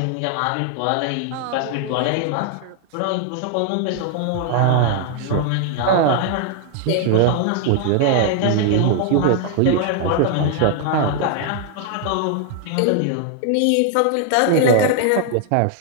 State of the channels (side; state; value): both; different; correlation 0.00